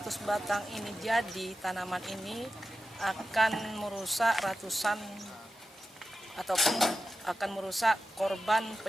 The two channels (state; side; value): normal; both; correlation 0.92